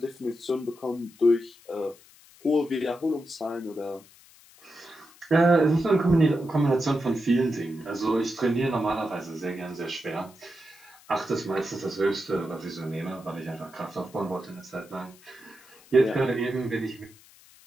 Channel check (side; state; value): left; noise; hiss, 25 dB below the sound